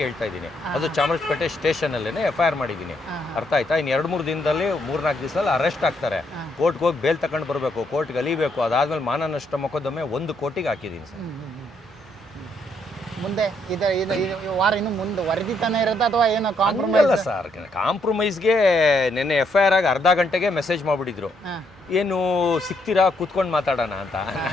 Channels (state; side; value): normal; both; correlation 0.74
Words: ಹೇಳ್ತಾ ಇದ್ದೀನಿ. ಅದು ಚಾಮರಾಜಪೇಟೆ ಸ್ಟೇಷನಲ್ಲೇ FIR ಮಾಡಿದ್ದೀನಿ. ಅರ್ಥ ಆಯ್ತಾ? ಇನ್ನು 2-3 ದಿನದಲ್ಲಿ 3-4 ದಿವಸದಲ್ಲಿ ಅರೆಸ್ಟ್ ಆಗ್ತಾರೆ. ಕೋರ್ಟ್ಗೆ ಹೋಗಿ ಬೇಲ್ ತಗೊಂಡು ಬರಬೇಕು, ಕೋರ್ಟ್ಗೆ ಅಲಿಬೇಕು. ಅದಾದ್ಮೇಲೆ ಮಾನ ನಷ್ಟ ಮೊಕದ್ದಮೆ 1 ಕೋಟಿಗೆ ಹಾಕಿದ್ದೀನಿ ಸರ್. ಮುಂದೆ ವಾರ ಇನ್ನು ಮುಂದೆ ವರದಿತಾನೆ ಇರುತ್ತೆ ಅಥವಾ ಏನೋ ಕಾಂಪ್ರಮೈಸ್? ಅಲ್ಲ ಸರ್, ಕಾಂಪ್ರಮೈಸ್ಗೆ ನಿನ್ನೆ FIR ಆಗಿ ಅರ್ಧ ಗಂಟೆಗೆ ಮೆಸೇಜ್ ಮಾಡಿಬಿಟ್ಟಿದ್ರು. ಏನು ಸಿಗ್ತೀರಾ ಕೂತ್ಕೊಂಡು ಮಾತಾಡೋಣ ಅಂತ.